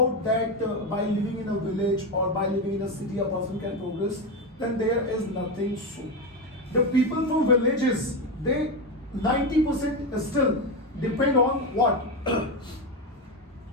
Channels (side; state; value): both; normal; correlation 0.14